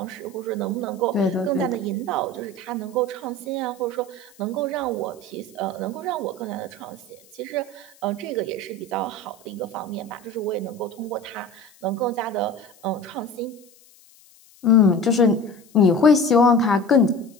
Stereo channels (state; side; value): noise; left; hiss, 27 dB below the sound